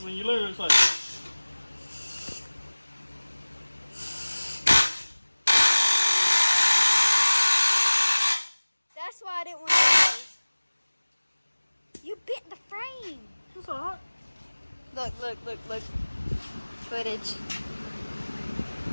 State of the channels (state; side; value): inverted; both; correlation -1.00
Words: When you literally it's like... That's why I didn't want to do those. You bit the frame. It's all right. Look. Footage.